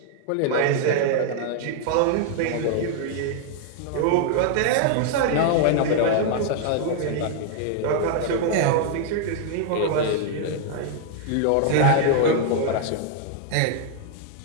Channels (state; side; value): different; both; correlation 0.00